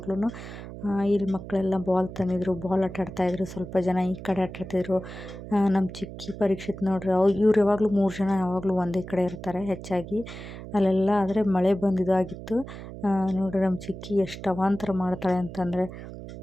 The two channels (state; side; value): noise; right; hum, 12 dB below the sound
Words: ಇಲ್ಲಿ ಮಕ್ಕಳೆಲ್ಲ ಬಾಲ್ ತಂದಿದ್ರು, ಬಾಲ್ ಆಟ ಆಡ್ತಾಯಿದ್ರು, ಸ್ವಲ್ಪ ಜನ ಈ ಕಡೆ ಆಟ ಆಡ್ತಿದ್ರು. ನಮ್ಮ ಚಿಕ್ಕಿ ಪರೀಕ್ಷಿತ್ ನೋಡ್ರಿ, ಇವ್ರು ಯಾವಾಗಲೂ 3 ಜನ ಯಾವಾಗಲೂ ಒಂದೇ ಕಡೆ ಇರ್ತಾರೆ ಹೆಚ್ಚಾಗಿ. ಅಲ್ಲೆಲ್ಲ ಆದರೆ ಮಳೆ ಬಂದಿದ್ದಾಗಿತ್ತು. ನೋಡ್ರಿ ನಮ್ಮ ಚಿಕ್ಕಿ ಎಷ್ಟು ಅವಾಂತರ ಮಾಡ್ತಾಳೆ ಅಂತಂದರೆ,